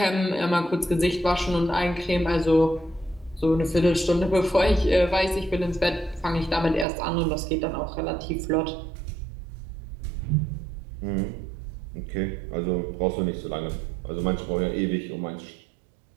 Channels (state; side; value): drops out; left; at 6.9 s